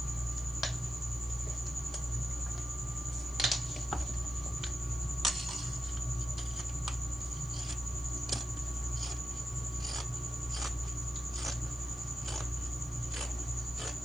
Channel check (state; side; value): noise; left; hiss, 26 dB below the sound